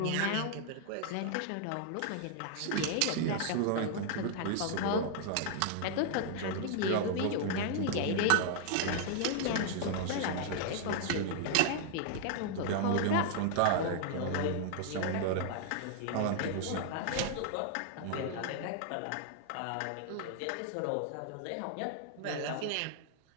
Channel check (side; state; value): both; different; correlation 0.00